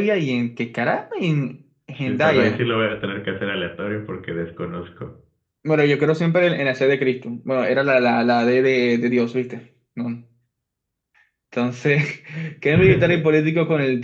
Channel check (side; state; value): both; identical; correlation 1.00